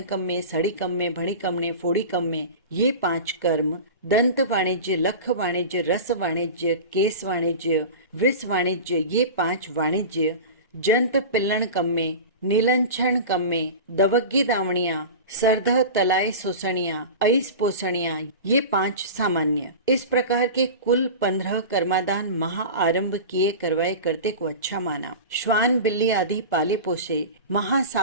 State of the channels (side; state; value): both; inverted; correlation -0.30